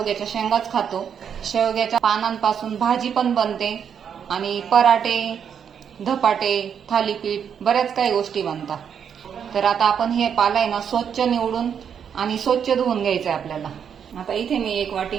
शेंगाच खातो। शेवग्याच्या पानांपासून भाजी पण बनते आणि पराठे, धपाटे, थालीपीठ बऱ्याच काही गोष्टी बनतात। तर आता आपण हे पाला आहे ना स्वच्छ निवडून आणि स्वच्छ धुवून घ्यायचं आहे आपल्याला। आता इथे मी एक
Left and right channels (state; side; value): quieter; left; 7.8 dB